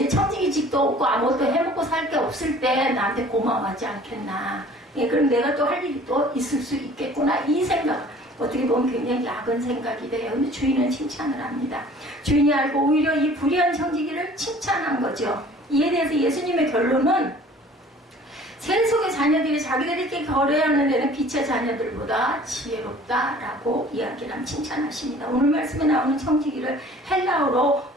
청지기직도 없고 아무것도 해먹고 살 게 없을 때 나한테 고마워하지 않겠나. 그럼 내가 또 할 일이 또 있을 수 있겠구나. 이 생각. 어떻게 보면 굉장히 야근 생각이 돼요. 근데 주인은 칭찬을 합니다. 주인이 알고 오히려 이 불의한 청지기를 칭찬한 거죠. 이에 대해서 예수님의 결론은 세속의 자녀들이 자기들끼리 거래하는 데는 빛의 자녀들보다 지혜롭다라고 이야기를 칭찬하십니다. 오늘 말씀에 나오는 청지기를 헬라어로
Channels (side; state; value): both; normal; correlation 0.49